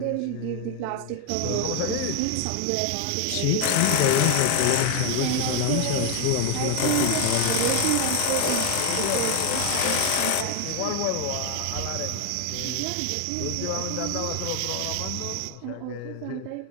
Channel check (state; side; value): different; both; correlation 0.00